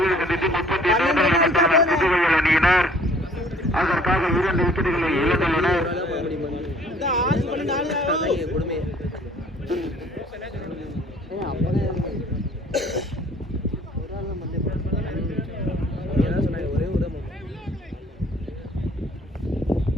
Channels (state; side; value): normal; both; correlation 0.55